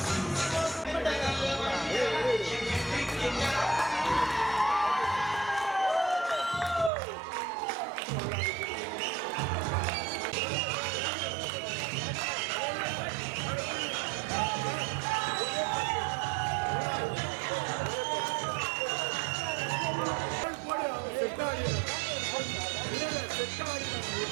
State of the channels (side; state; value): left; drops out; at 6.9 s